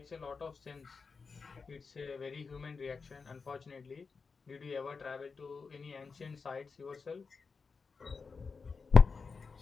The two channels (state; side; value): quieter; right; 4.9 dB